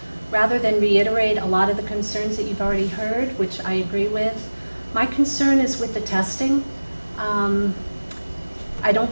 Rather than reiterate a lot of the concerns that you've already heard, which I agree with, my concern is with the testing. I don't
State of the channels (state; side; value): inverted; both; correlation -1.00